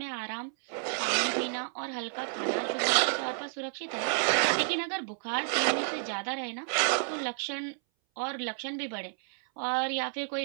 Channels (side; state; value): left; silent; 57 dB below the other